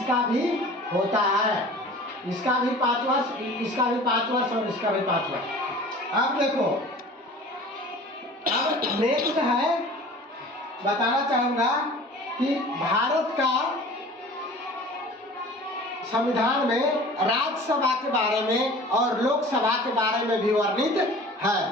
भी होता है। इसका भी 5 वर्ष, इसका भी 5 वर्ष और इसका भी 5 वर्ष। अब देखो, अब नेक्स्ट है, बताना चाहूंगा कि भारत का संविधान में राज्यसभा के बारे में और लोकसभा के बारे में भी वर्णित है।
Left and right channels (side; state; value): both; normal; correlation 0.43